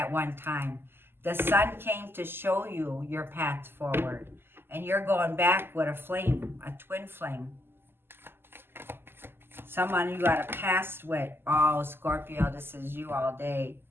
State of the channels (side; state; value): left; late; 0.11 ms